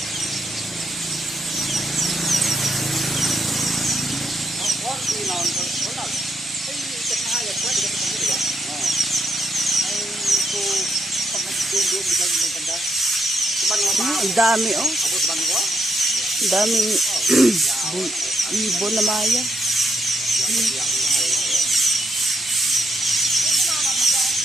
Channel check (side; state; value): both; normal; correlation 0.78